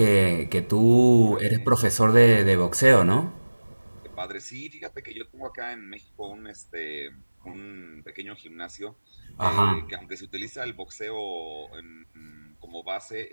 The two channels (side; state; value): both; inverted; correlation -1.00